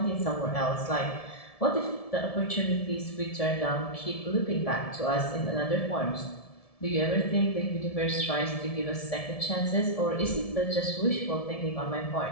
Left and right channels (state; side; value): late; right; 1.7 ms